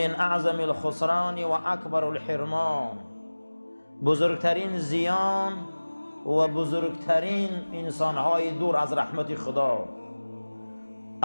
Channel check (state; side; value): inverted; both; correlation -1.00